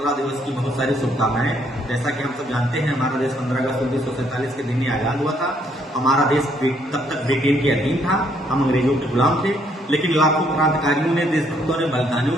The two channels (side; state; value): both; normal; correlation 0.69